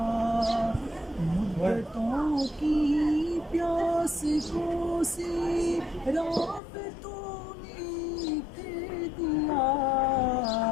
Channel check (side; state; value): right; drops out; at 6.6 s